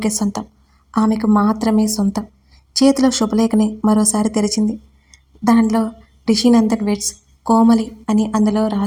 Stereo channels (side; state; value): both; identical; correlation 1.00